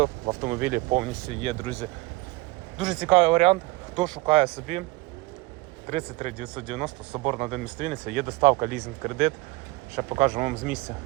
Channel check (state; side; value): quieter; left; 22.0 dB